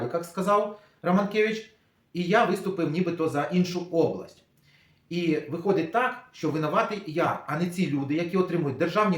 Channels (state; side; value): identical; both; correlation 1.00